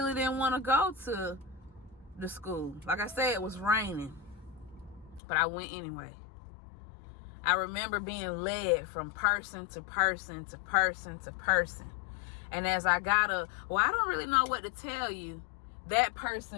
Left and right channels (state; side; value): drops out; right; at 5.2 s